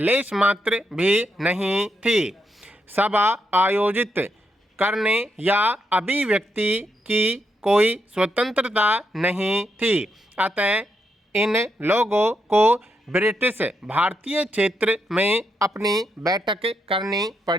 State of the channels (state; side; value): normal; both; correlation 0.81